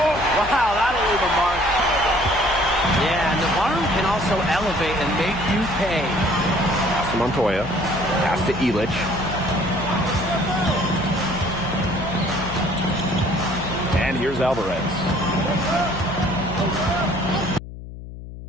wow, that'll leave a mark. Yeah, Navarro can also elevate and make you pay. Pass to Montoya. Pass to Illich. And here's Alvarez.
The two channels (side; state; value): left; noise; hum, 12 dB below the sound